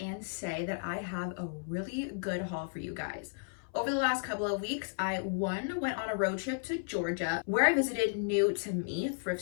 say that I have a really good haul for you guys. Over the last couple of weeks, I went on a road trip to Georgia where I visited new to me thrift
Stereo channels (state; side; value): silent; right; 55 dB below the other